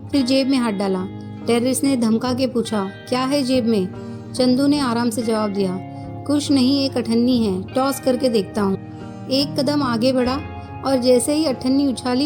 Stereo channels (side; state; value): both; identical; correlation 1.00